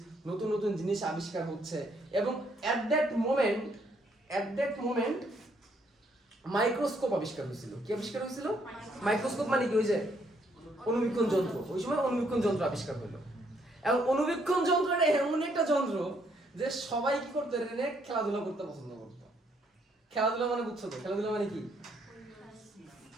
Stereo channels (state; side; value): normal; both; correlation 0.70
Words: নতুন নতুন জিনিস আবিষ্কার হচ্ছে, এবং অ্যাট দ্যাট মোমেন্ট মাইক্রোস্কোপ আবিষ্কার হয়েছিল। কি আবিষ্কার হয়েছিল? মাইক্রোস্কোপ মানে কি, ওই যে অণুবীক্ষণ যন্ত্র। ওই সময় অণুবীক্ষণ যন্ত্র আবিষ্কার হলো, এবং অণুবীক্ষণ যন্ত্রটা এমন একটা যন্ত্র যে সবাই কি করতো, এটা নিয়ে খেলাধুলা করতে পছন্দ করতো। খেলাধুলা মানে বুঝছো তো, খেলাধুলা মানে কি,